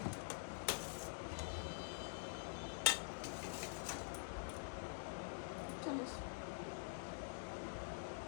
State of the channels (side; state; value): right; silent; digital silence